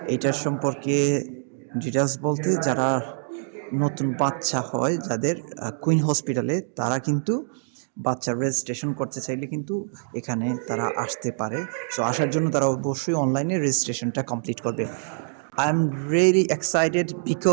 এইটার সম্পর্কে ডিটেলস বলতে, যারা নতুন বাচ্চা হয় যাদের কুইন হসপিটালে, তারা কিন্তু বাচ্চার রেজিস্ট্রেশন করতে চাইলে কিন্তু এখানে তারা আসতে পারে। সো আসার জন্য তারা অবশ্যই অনলাইনে রেজিস্ট্রেশনটা কমপ্লিট করবে। I'm really excited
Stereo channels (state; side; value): silent; left; digital silence